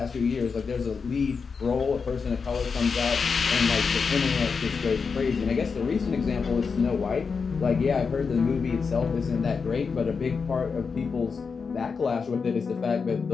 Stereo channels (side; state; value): right; quieter; 5.3 dB